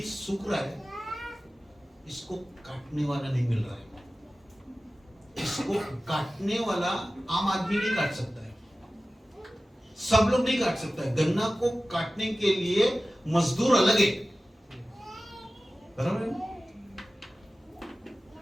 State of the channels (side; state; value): both; normal; correlation 0.96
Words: सूख रहा है, इसको काटने वाला नहीं मिल रहा है। इसको काटने वाला आम आदमी नहीं काट सकता है, सब लोग नहीं काट सकता है। गन्ना को काटने के लिए मजदूर अलग है, बराबर है?